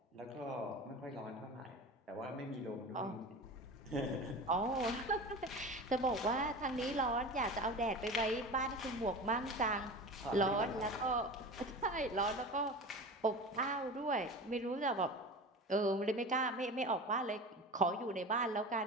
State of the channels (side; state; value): both; normal; correlation 0.32